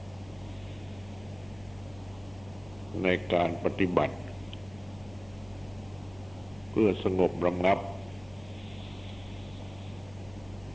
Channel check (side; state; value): left; noise; hum, 21 dB below the sound